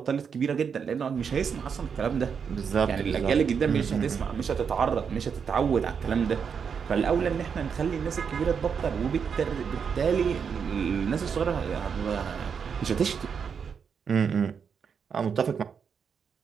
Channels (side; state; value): left; quieter; 6.6 dB